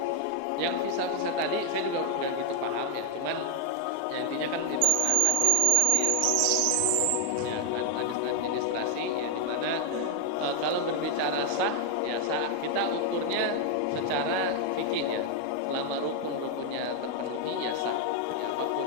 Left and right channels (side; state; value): both; different; correlation 0.01